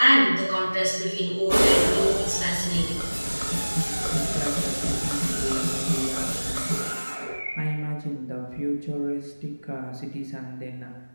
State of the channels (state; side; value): inverted; both; correlation -1.00